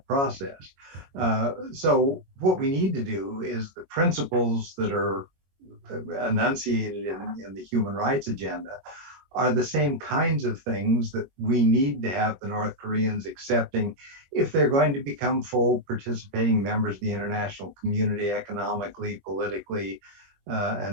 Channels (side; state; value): left; late; 22 ms